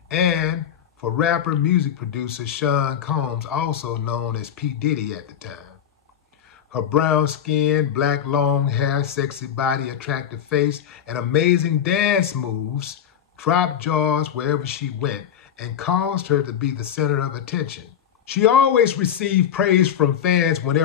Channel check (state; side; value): quieter; right; 9.2 dB